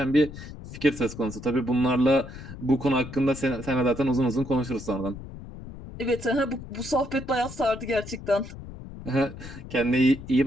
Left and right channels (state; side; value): noise; left; rumble, 13 dB below the sound